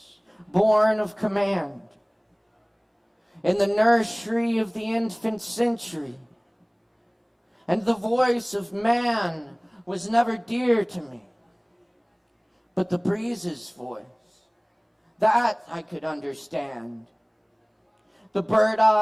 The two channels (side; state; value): both; identical; correlation 1.00